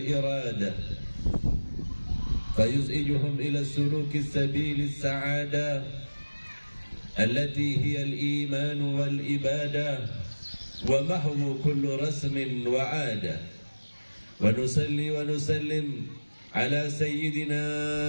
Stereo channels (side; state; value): both; inverted; correlation -1.00